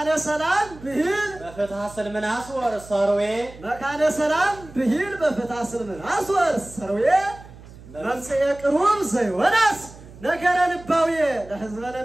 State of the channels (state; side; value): noise; right; hum, 19 dB below the sound